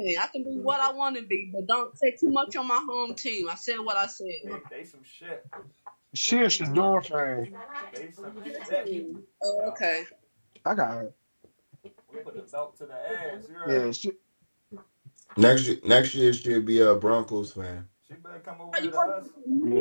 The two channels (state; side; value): inverted; both; correlation -1.00